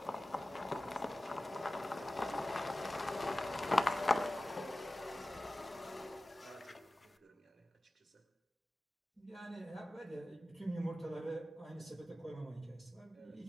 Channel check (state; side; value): normal; both; correlation 0.96